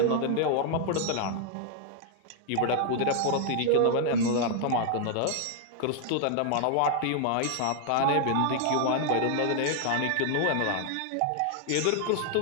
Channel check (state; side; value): different; both; correlation 0.00